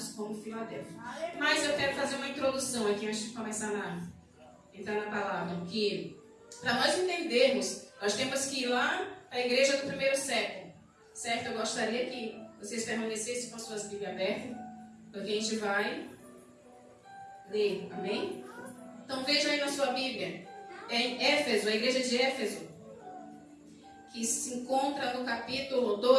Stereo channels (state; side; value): identical; both; correlation 1.00